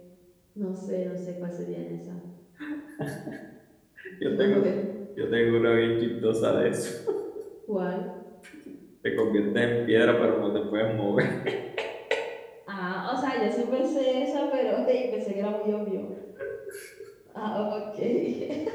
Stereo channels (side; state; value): both; identical; correlation 1.00